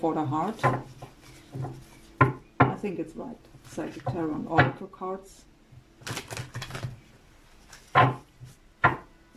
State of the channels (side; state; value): both; identical; correlation 1.00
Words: the heart. I think it's right. Psychic Tarot and Oracle cards.